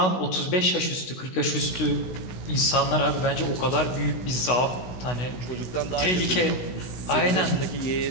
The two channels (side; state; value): right; late; 16 ms